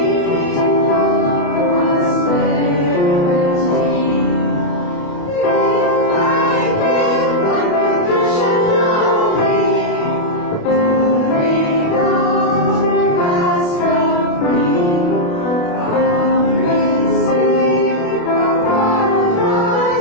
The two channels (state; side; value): late; right; 29 ms